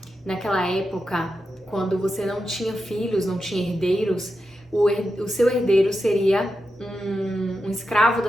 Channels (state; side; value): normal; both; correlation 0.88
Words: naquela época, quando você não tinha filhos, não tinha herdeiros, o seu herdeiro seria um escravo